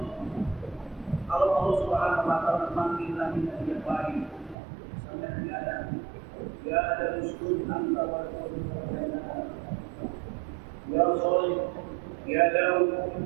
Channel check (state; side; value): drops out; left; at 4.5 s